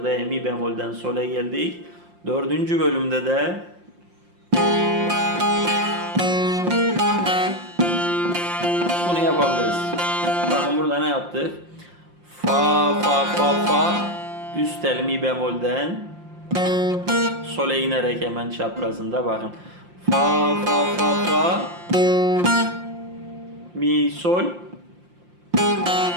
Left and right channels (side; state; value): left; late; 5.7 ms